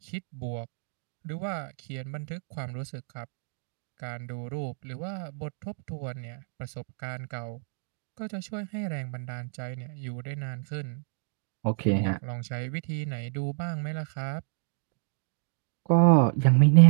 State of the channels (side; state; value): left; silent; digital silence